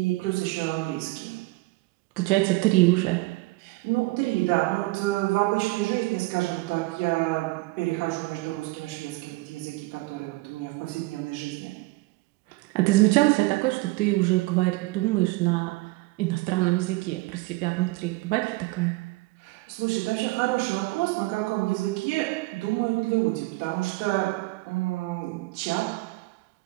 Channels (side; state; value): left; quieter; 22.1 dB